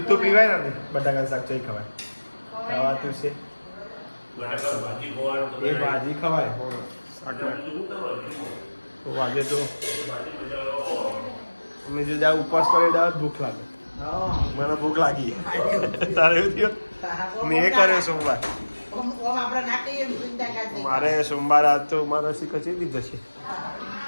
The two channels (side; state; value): both; inverted; correlation -1.00